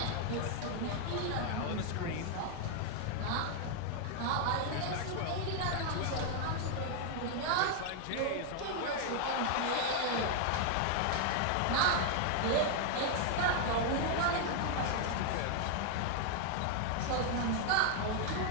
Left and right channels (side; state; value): both; different; correlation 0.00